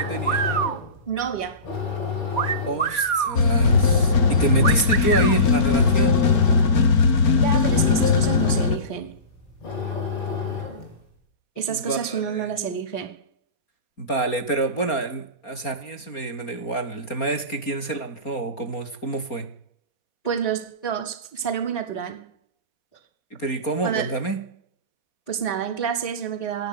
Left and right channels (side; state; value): right; late; 4.3 ms